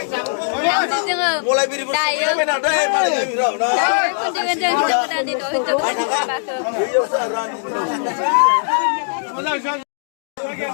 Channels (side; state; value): right; silent; digital silence